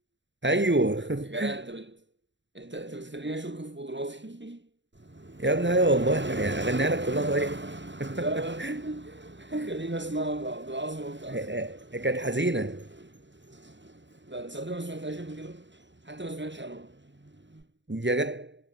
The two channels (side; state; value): left; late; 0.53 ms